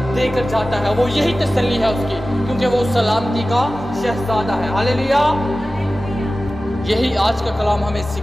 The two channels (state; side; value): normal; both; correlation 0.96